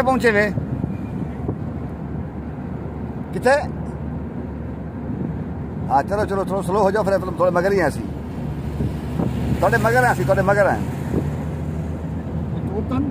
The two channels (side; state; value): both; identical; correlation 1.00